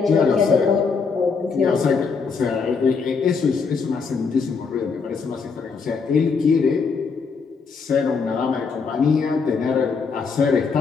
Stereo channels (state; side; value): quieter; right; 5.2 dB